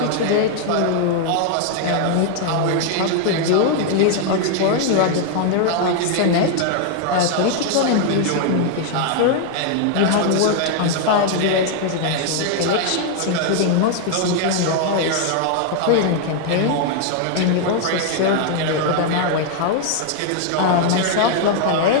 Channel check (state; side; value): different; both; correlation 0.00